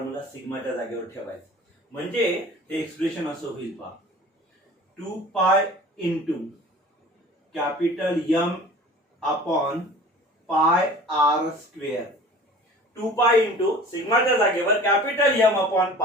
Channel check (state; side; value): normal; both; correlation 0.43